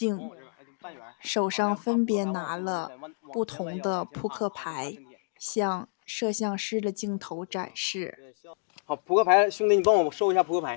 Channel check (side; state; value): right; silent; digital silence